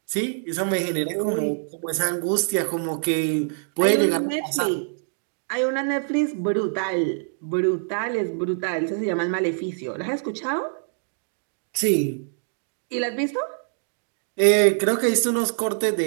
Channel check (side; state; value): left; silent; digital silence